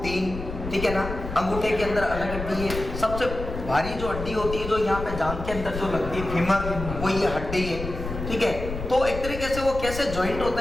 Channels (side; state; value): left; noise; rumble, 7 dB below the sound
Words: 3, ठीक है ना, अंगूठे के अंदर अलग हड्डी है। सबसे भारी जो हड्डी होती है जो यहाँ पे जांघ के अंदर जो लगती है फीमर, वो ये हड्डी है, ठीक है। तो एक तरीके से वो कैसे ज्वाइंट होता